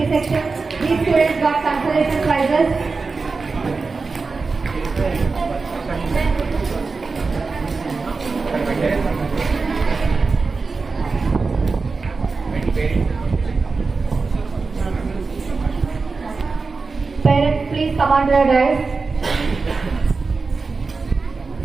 section. These students got consolation prizes. Parents, please come on to the dais.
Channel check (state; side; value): quieter; left; 4.3 dB